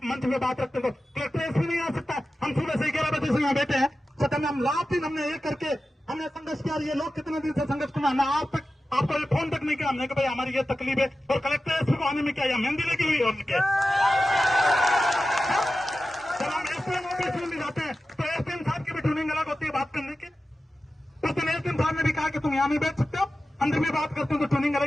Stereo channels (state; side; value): normal; both; correlation 0.94